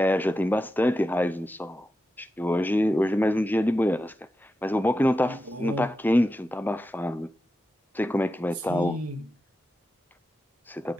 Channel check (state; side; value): normal; both; correlation 0.90